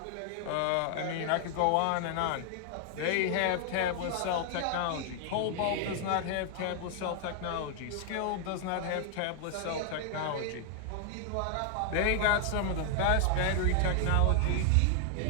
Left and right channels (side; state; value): both; different; correlation 0.00